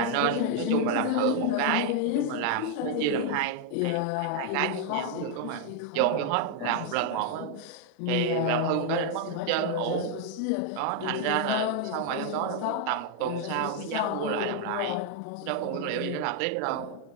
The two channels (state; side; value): different; both; correlation 0.00